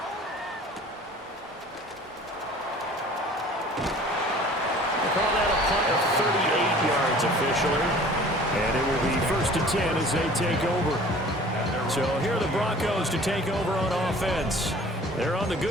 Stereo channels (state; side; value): normal; both; correlation 0.47